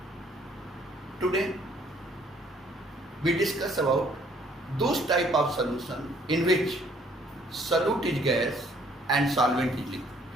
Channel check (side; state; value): both; normal; correlation 0.63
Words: Today we discuss about those type of solution in which solute is gas and solvent is liquid.